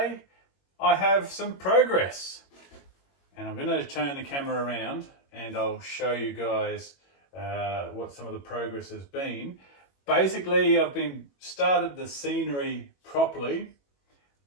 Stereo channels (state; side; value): late; right; 21 ms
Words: I have some progress and I'm going to turn the camera around and I'll show you guys what some of the progress has been. Basically, I've started the scenery properly